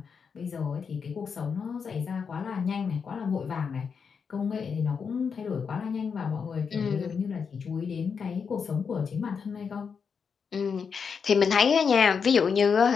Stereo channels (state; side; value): quieter; right; 6.1 dB